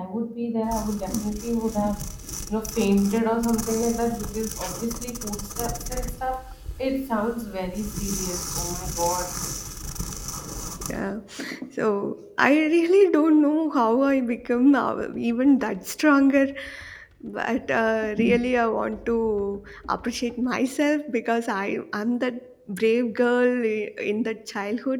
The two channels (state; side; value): identical; both; correlation 1.00